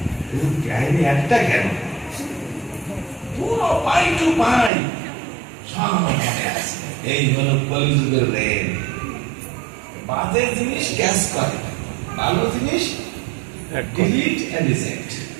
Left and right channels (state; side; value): drops out; left; at 4.7 s